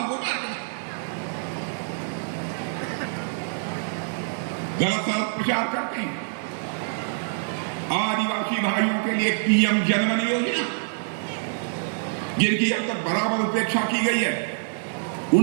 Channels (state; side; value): silent; left; 59 dB below the other